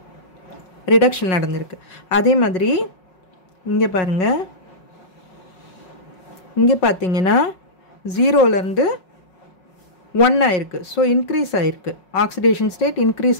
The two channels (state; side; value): late; right; 5.4 ms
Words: நடந்திருக்கு. அதே மாதிரி இங்கே பாருங்கள், இங்கே பார்த்தீங்கன்னா 0லேருந்து 1 ஆயிருக்கு. ஸோ இன்க்ரீஸ் ஆயிருக்கு, ஆக்சிடேஷன் ஸ்டேட் இன்க்ரீஸ்